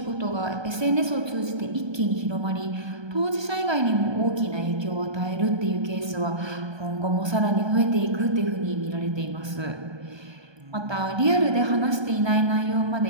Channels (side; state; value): left; late; 1.2 ms